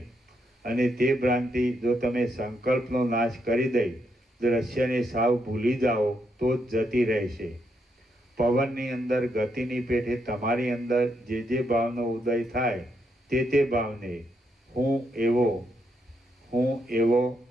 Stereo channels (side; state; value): both; normal; correlation 0.79